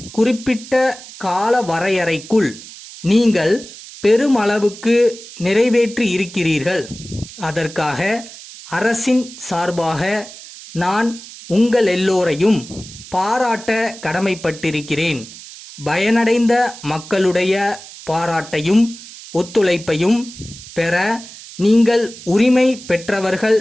குறிப்பிட்ட கால வரையறைக்குள் நீங்கள் பெருமளவுக்கு நிறைவேற்றி இருக்கிறீர்கள். அதற்காக அரசின் சார்பாக நான் உங்கள் எல்லோரையும் பாராட்ட கடமைப்பட்டிருக்கிறேன். பயனடைந்த மக்களுடைய பாராட்டையும் ஒத்துழைப்பையும் பெற நீங்கள் உரிமை பெற்றவர்கள்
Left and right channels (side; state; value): right; noise; hiss, 16 dB below the sound